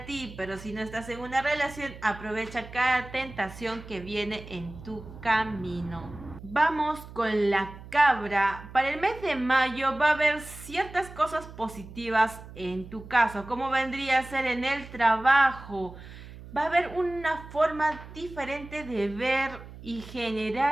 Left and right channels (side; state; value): right; noise; hum, 15 dB below the sound